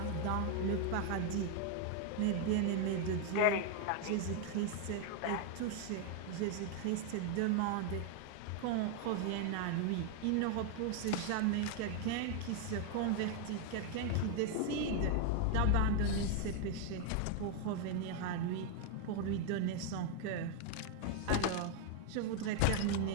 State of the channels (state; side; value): different; both; correlation 0.01